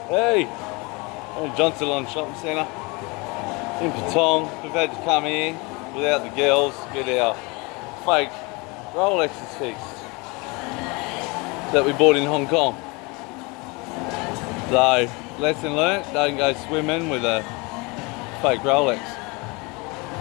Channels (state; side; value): quieter; right; 27.4 dB